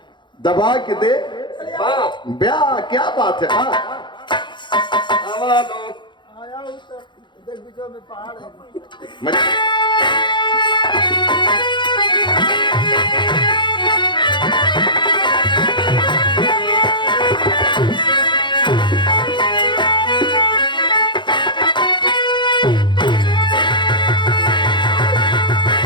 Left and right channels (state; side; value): late; right; 0.23 ms